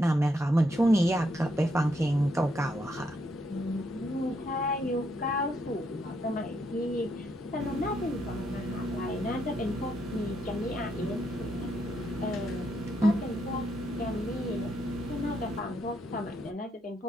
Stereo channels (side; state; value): both; normal; correlation 0.76